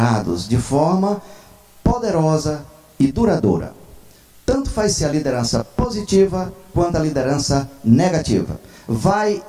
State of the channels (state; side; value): identical; both; correlation 1.00